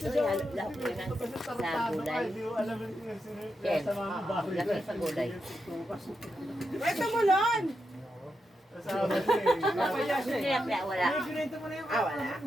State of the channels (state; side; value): normal; both; correlation 0.85